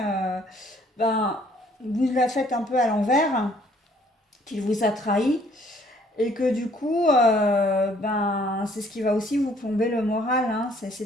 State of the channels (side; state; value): both; normal; correlation 0.62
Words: ben, vous la faites un peu à l'envers, qu'il vous a trahi et que du coup, ben, c'est ce qui va aussi vous plomber le moral, hein.